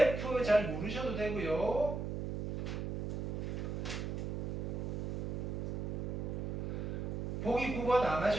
잘 모르셔도 되고요. 보기 9번 안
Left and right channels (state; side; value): noise; right; hum, 2 dB below the sound